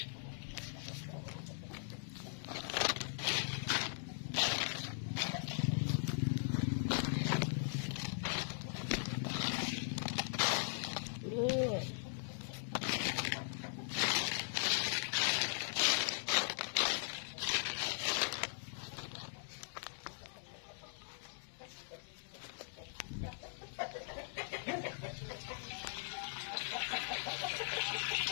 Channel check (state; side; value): silent; right; digital silence